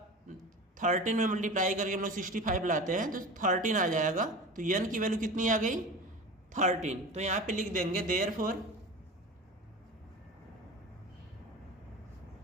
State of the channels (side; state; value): both; normal; correlation 0.32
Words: 13 में मल्टीप्लाई करके हम लोग 65 लाते हैं तो 13 आ जाएगा। तो n की वैल्यू कितनी आ गई 13। तो यहाँ पे लिख देंगे therefore